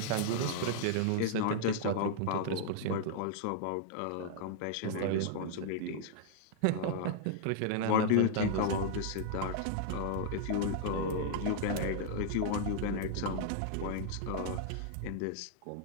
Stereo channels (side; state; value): both; different; correlation -0.01